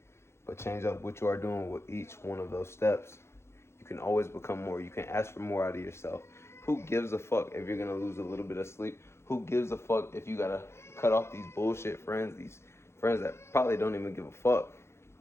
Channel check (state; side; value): late; right; 0.13 ms